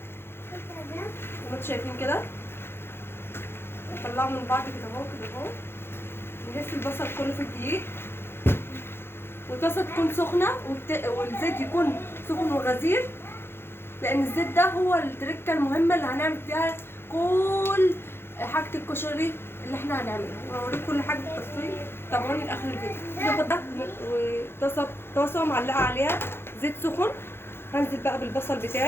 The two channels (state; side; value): late; right; 0.11 ms